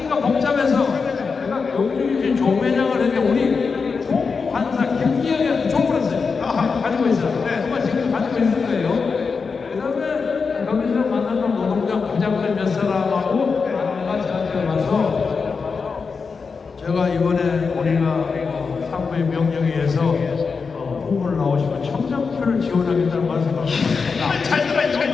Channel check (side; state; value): right; quieter; 5.1 dB